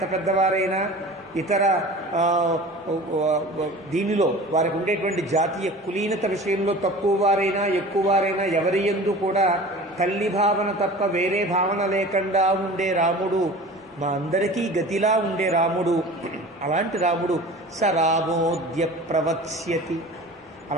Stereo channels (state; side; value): normal; both; correlation 0.39